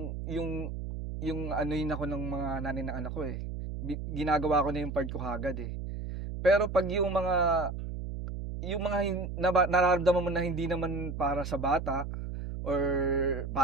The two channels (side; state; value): right; noise; hum, 6 dB below the sound